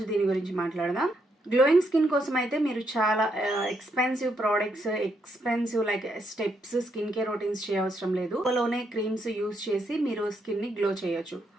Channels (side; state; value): both; normal; correlation 0.77